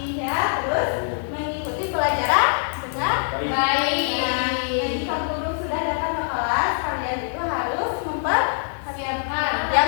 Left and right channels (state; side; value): silent; right; 60 dB below the other